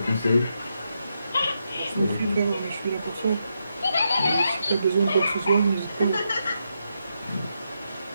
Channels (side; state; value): both; inverted; correlation -0.83